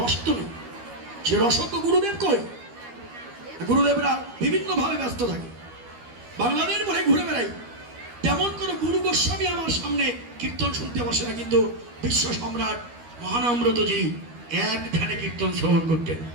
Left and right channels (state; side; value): late; left; 12 ms